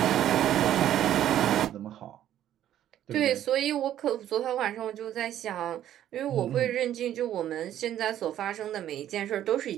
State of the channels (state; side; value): quieter; left; 11.6 dB